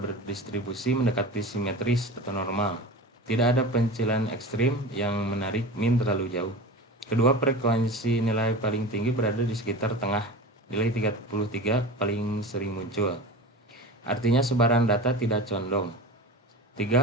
mendekati simetris atau normal. Tidak ada pencilan ekstrim yang menarik mean terlalu jauh. Kedua frekuensi nilai paling tinggi berada di sekitar tengah. Nilai 33 paling sering muncul. Artinya sebaran data tidak condong.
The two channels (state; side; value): normal; both; correlation 0.32